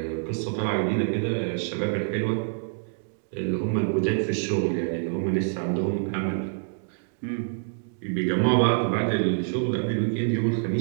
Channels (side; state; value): left; silent; digital silence